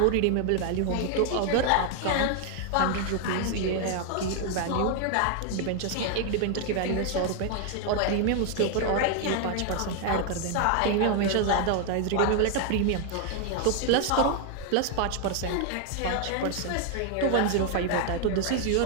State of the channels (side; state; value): both; different; correlation 0.00